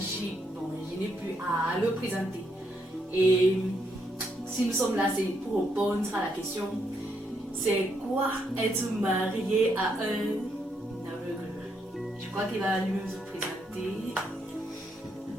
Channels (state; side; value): normal; both; correlation 0.76